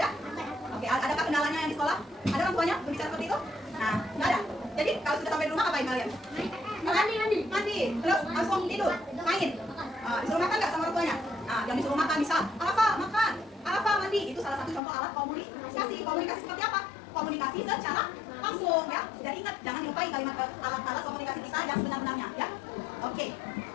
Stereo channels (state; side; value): drops out; right; at 14.8 s